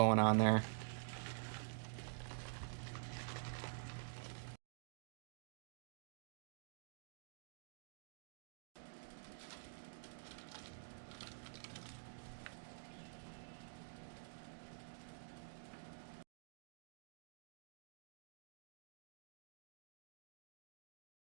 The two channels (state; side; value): silent; left; digital silence